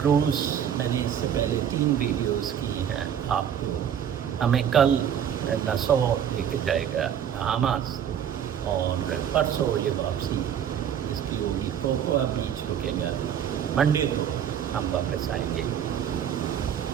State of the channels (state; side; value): quieter; left; 9.0 dB